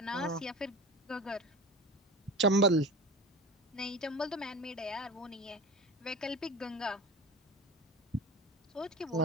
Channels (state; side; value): normal; both; correlation 0.32